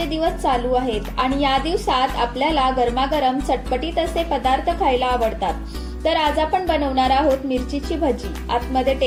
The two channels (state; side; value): identical; both; correlation 1.00